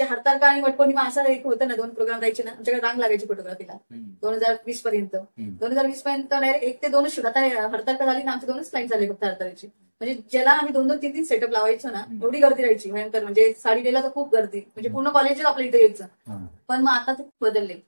हरतालिका आणि वटपौर्णिमा असं एक होतं ना, 2 प्रोग्राम राहायचे ना, आमच्याकडे रांग लागायची फोटोग्राफीला 2020 पर्यंत. 2020 पर्यंत डायरेक्ट 1 ते 2च शूट. आता हरतालिका झाली ना, आमचे 2च क्लाइंट झाले फक्त हरतालिकेचे. म्हणजे ज्याला आम्ही 2-2, 3-3 सेटअप लावायचो ना, एवढी गर्दी राहायची भयंकर. म्हणजे साडी द्यायला तर खूप गर्दी, म्हणजे पूर्ण कॉलेजच आपल्या इथे यायचं. पण मग आता ते बदलले,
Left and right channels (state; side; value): inverted; both; correlation -1.00